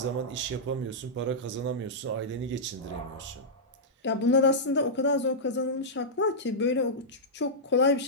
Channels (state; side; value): normal; both; correlation -0.12